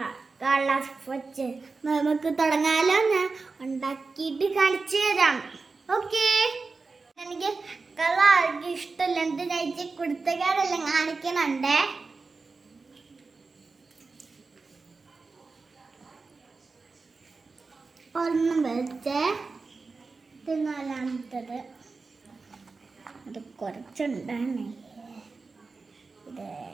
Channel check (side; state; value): left; quieter; 4.1 dB